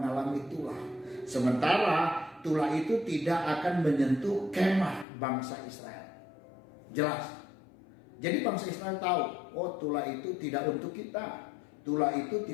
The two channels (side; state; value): right; drops out; at 5.1 s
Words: tulah. Sementara tulah itu tidak akan menyentuh kemah bangsa Israel. Jelas. Jadi bangsa Israel tahu, oh tulah itu tidak untuk kita. Tulah itu